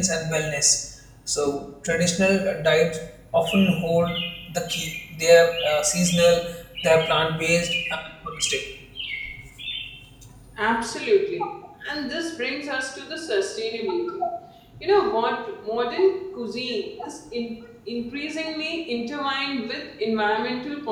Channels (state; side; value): identical; both; correlation 1.00